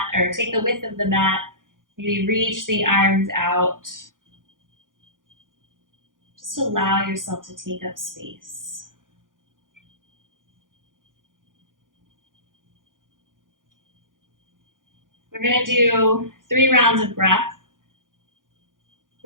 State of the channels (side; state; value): left; late; 0.89 ms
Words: or take the width of the mat. Maybe reach the arms out. Just allow yourself to take up space. We're going to do 3 rounds of breath.